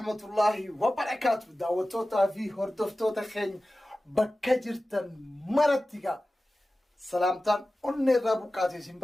الله وبركاته دعوتوتا في هردفتوتا خين بكجرتن مرتيغا سلامتان أني رابوكاتي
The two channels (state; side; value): normal; both; correlation 0.96